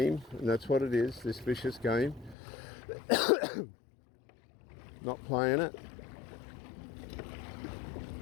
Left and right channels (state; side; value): drops out; right; at 2.4 s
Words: and that's what it is, this vicious game. Not playing it.